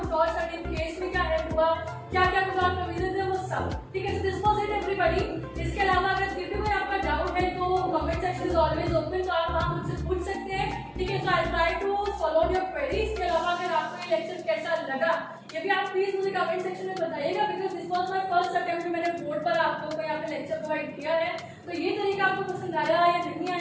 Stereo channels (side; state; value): both; identical; correlation 1.00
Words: और सर्टेन केस में क्या हेल्प हुआ, क्या क्या कुछ और प्रोविजंस है वो सब, ठीक है। So this was it everybody. इसके अलावा अगर फिर भी कोई आपका डाउट है तो comment section is always open, तो आप वहां मुझसे पूछ सकते हैं, ठीक है। So I try to follow your queries. इसके अलावा अगर आपको ये लेक्चर कैसा लगा ये भी आप प्लीज मुझे कमेंट सेक्शन में बताइएगा, because this was my first attempt, मैंने बोर्ड पर आप लोगों को यहाँ पे लेक्चर प्रोवाइड किया है, तो ये तरीका आपको पसंद आया या नहीं